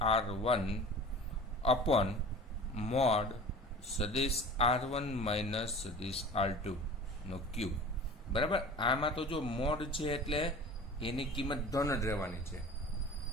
R1 અપોન મોડ સદિશ R1 માઇનસ સદિશ R2 નો ક્યુબ. બરાબર, આમાં તો જો મોડ છે એટલે એની કિંમત ધન જ રહેવાની છે,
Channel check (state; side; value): normal; both; correlation 0.39